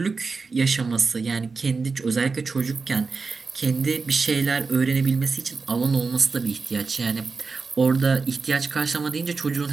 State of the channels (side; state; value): left; quieter; 4.5 dB